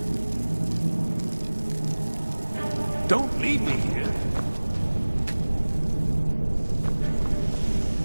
Don't leave me here.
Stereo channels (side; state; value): both; inverted; correlation -1.00